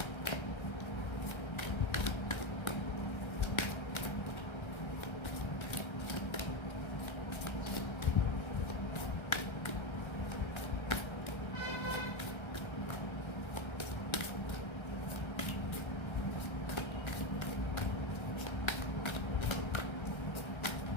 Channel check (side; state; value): right; late; 1.3 ms